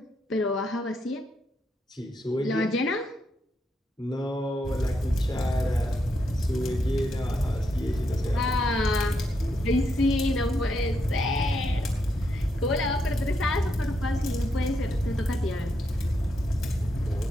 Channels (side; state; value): both; normal; correlation 0.80